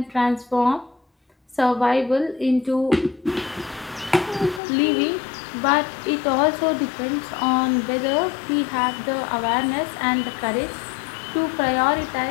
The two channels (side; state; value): right; drops out; at 4.6 s